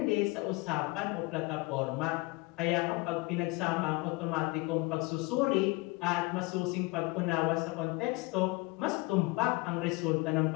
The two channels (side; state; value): right; quieter; 24.3 dB